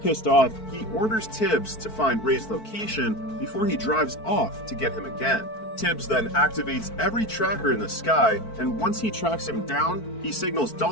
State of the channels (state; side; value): late; right; 4.5 ms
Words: Pissed off, he orders Tibbs to find Ray's location before he drives off to get him again. Tibbs then activates every tracker in the sky, and once he tracks him down, he signals